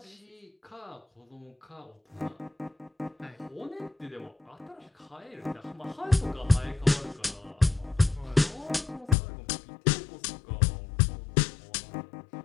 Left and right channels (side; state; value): right; drops out; at 9.2 s